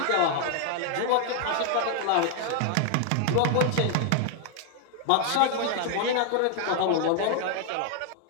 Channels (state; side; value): different; both; correlation 0.00